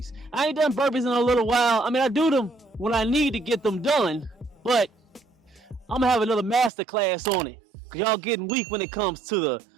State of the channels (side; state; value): left; drops out; at 6.7 s